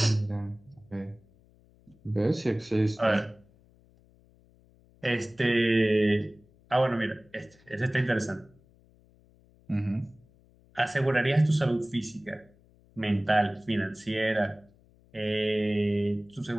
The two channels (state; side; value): noise; left; hum, 30 dB below the sound